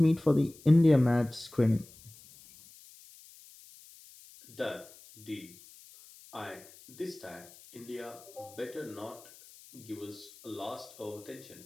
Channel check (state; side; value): noise; left; hiss, 22 dB below the sound